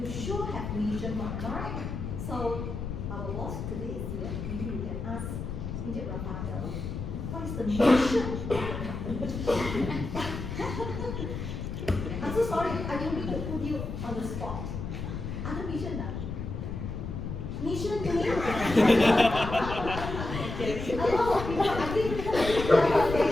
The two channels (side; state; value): left; noise; rumble, 6 dB below the sound